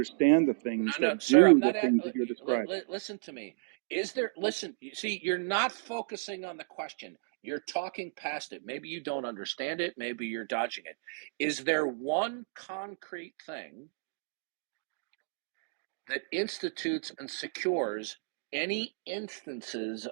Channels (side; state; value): left; silent; digital silence